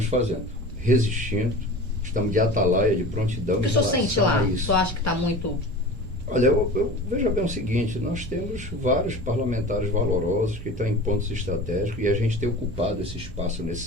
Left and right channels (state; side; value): normal; both; correlation 0.36